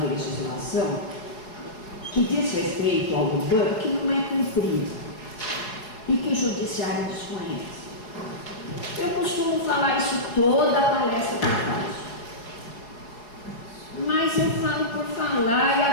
legislação que diz respeito ao urbano que não é cumprida e que o judiciário desconhece. Eu costumo falar isso toda a palestra que eu faço, mas eu falo por falar e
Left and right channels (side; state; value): right; late; 4.7 ms